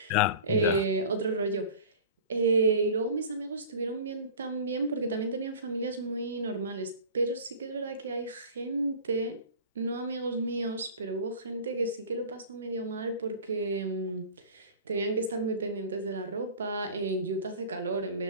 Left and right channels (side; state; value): both; inverted; correlation -0.39